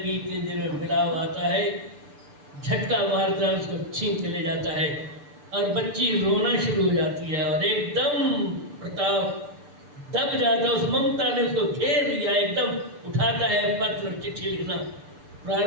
इतनी देर में बिलाव आता है, झटका मारता है, उसको छीन के ले जाता है और बच्ची रोना शुरू हो जाती है और एकदम प्रताप दब जाता है। उस ममता ने उसको घेर लिया, एकदम उठाता है पत्र, चिट्ठी लिखना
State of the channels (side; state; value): left; late; 6.9 ms